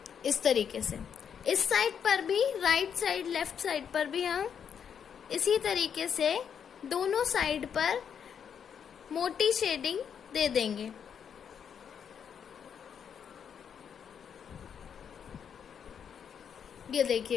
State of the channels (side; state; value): right; quieter; 7.7 dB